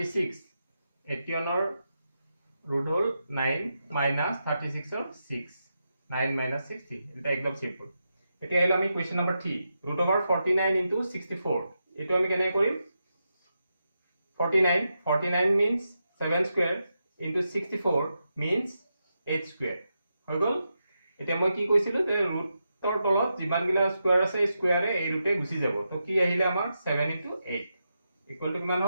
81 ৰ root হল 9 minus 36 ৰ 6. 9 minus 60 এটা একদম সিম্পল এতিয়া হলো আমি question number 3 root over 49 into 64 এটো আমি কেনে কৰিম 49 means 7 square into 64 means 8 square হৈ গল এতিয়া মই কি কৈছিলো যে ৰুটৰ তলত যিমান গিলা স্কয়াৰ আছে স্কয়াৰে এই ৰুটে গুছি যাব তো কি আহিলে আমাৰ 7 into 8 ইকুৱেল টু কিমান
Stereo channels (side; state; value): both; inverted; correlation -0.87